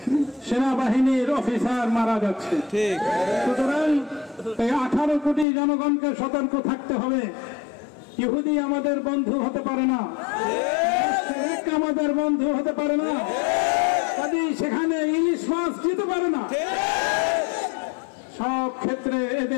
সেনাবাহিনীর অফিসার মারা যাচ্ছে। সুতরাং এই 18 কোটি জনগণকে সতর্ক থাকতে হবে। ইহুদি আমাদের বন্ধু হতে পারে না, আমাদের বন্ধু হতে পারে না, কাজে সেখানে ইলিশ মাছ যেতে পারে না। সব ক্ষেত্রে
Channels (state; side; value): drops out; right; at 5.5 s